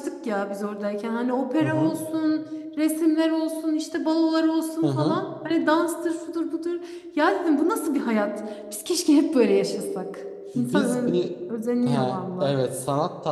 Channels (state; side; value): identical; both; correlation 1.00